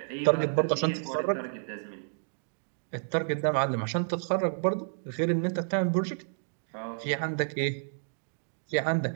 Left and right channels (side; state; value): left; silent; digital silence